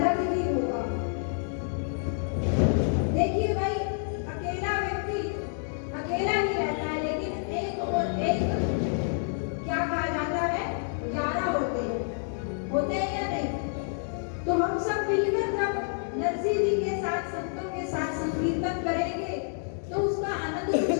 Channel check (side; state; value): right; silent; digital silence